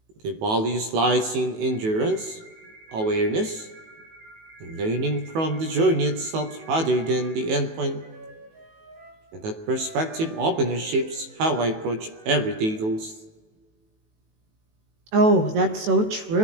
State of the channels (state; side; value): late; left; 19 ms